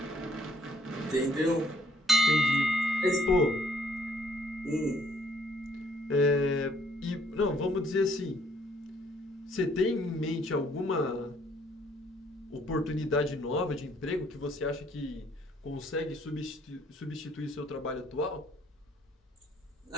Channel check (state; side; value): normal; both; correlation 0.64